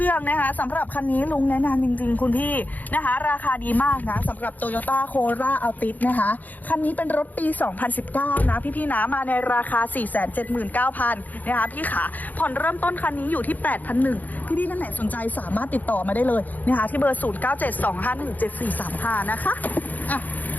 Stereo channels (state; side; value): late; right; 0.082 ms